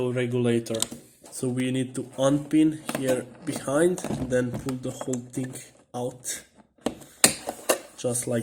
regulator. So we need to unpin here behind and then pull the whole thing out. Just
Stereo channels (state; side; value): identical; both; correlation 1.00